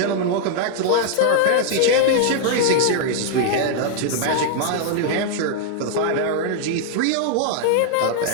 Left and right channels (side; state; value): both; different; correlation 0.00